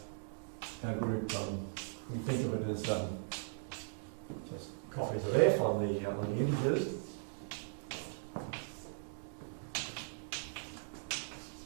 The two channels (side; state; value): left; silent; digital silence